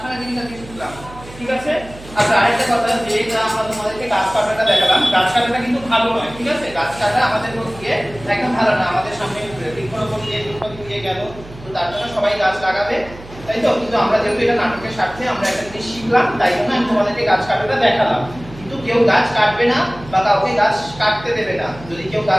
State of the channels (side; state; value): right; noise; hum, 18 dB below the sound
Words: জিনিস আজকে শিখলাম, ঠিক আছে? আচ্ছা আরেকটা কথা, যেটা আমরা তোমাদেরকে গাছ কাটাটা দেখালাম, গাছ কাটাটা কিন্তু ভালো নয়, ঠিক আছে? গাছ কাটা আমাদের পক্ষে একদম ভালো না। আমাদের সামনে বৃক্ষরোপণ দিয়ে গেল, তো তার জন্য সবাই গাছ লাগাবে, তাই তো? কিন্তু আমরা যেহেতু এটা নাটকের স্বার্থে আমরা একটা জিনিস শিখলাম, তাই জন্য আমি তোমাদেরকে গাছ কাটাটা দেখালাম। কিন্তু কেউ গাছ কাটবে না বা কাউকে গাছ কাটতে দেবে না। যদি কেউ